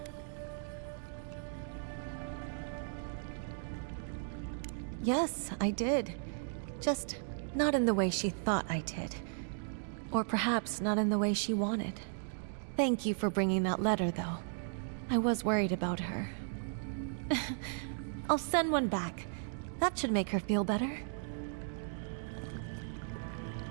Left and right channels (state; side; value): silent; left; digital silence